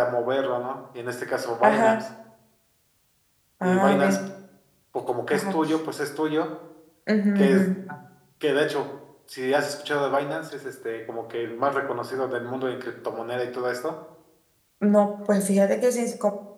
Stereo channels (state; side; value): identical; both; correlation 1.00